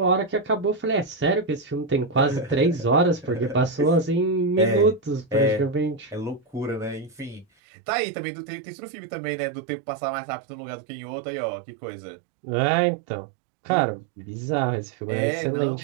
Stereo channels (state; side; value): drops out; left; at 7.5 s